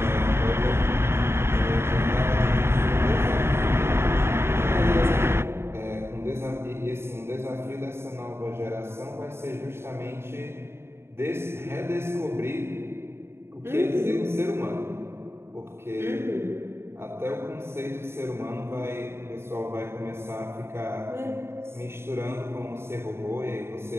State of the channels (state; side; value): late; left; 0.12 ms